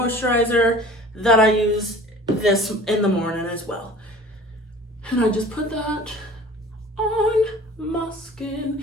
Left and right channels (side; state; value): both; normal; correlation 0.45